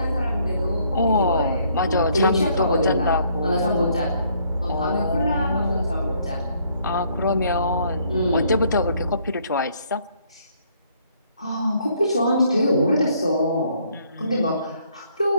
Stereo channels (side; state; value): both; inverted; correlation -0.66